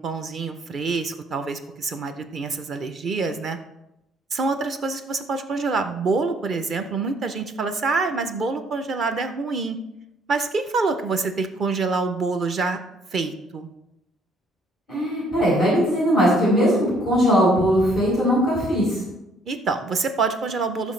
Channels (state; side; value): normal; both; correlation 0.63